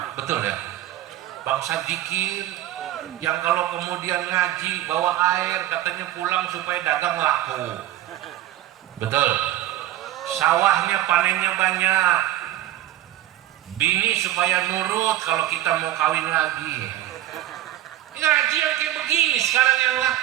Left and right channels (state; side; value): quieter; left; 13.7 dB